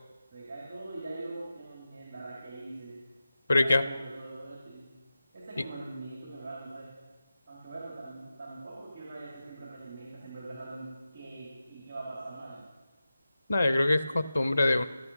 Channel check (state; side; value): inverted; both; correlation -0.94